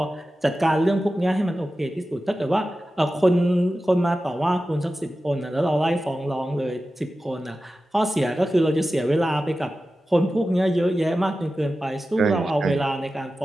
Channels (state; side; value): normal; both; correlation 0.94